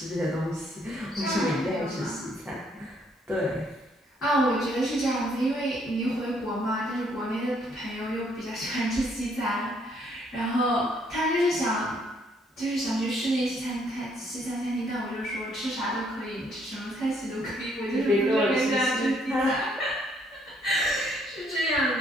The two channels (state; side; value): normal; both; correlation 0.68